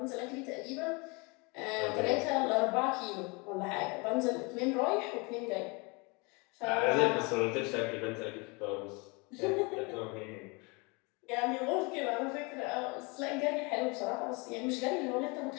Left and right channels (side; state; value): right; quieter; 28.9 dB